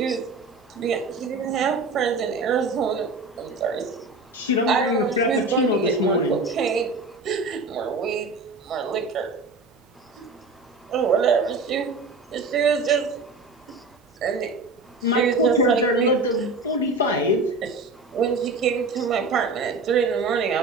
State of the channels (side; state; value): left; quieter; 3.3 dB